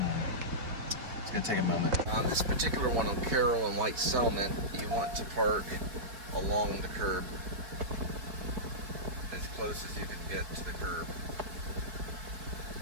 It's gonna take a moment. On this particular one on Carroll and White Settlement, you want to park along the curb, as close as you can get to the curb.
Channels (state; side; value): late; left; 4.9 ms